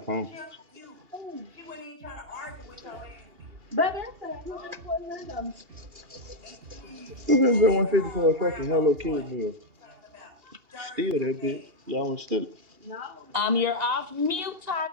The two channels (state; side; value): late; left; 2.8 ms